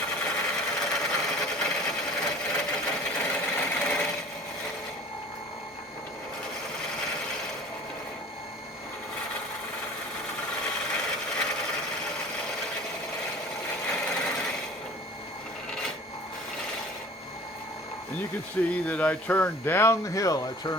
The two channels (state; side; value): normal; both; correlation 0.45